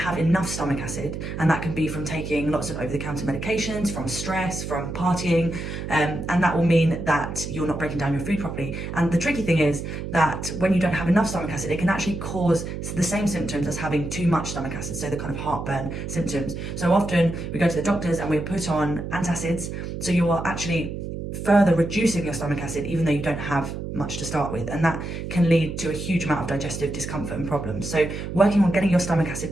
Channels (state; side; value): noise; right; hum, 6 dB below the sound